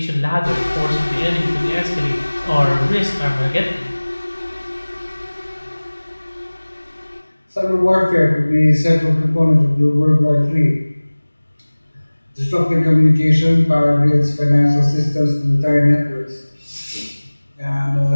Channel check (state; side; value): inverted; both; correlation -1.00